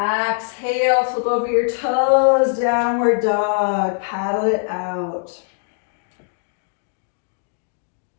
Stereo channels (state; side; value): silent; right; digital silence